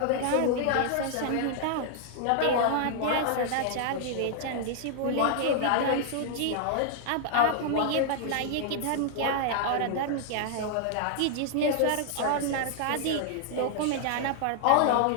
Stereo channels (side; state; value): both; different; correlation 0.00